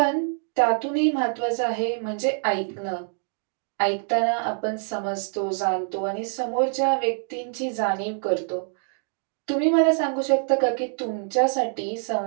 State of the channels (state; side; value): silent; left; 56 dB below the other